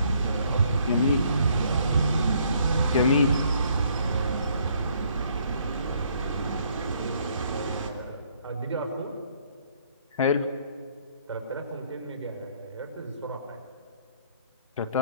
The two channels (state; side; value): inverted; both; correlation -0.65